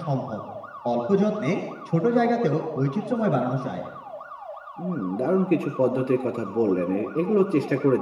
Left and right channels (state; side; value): identical; both; correlation 1.00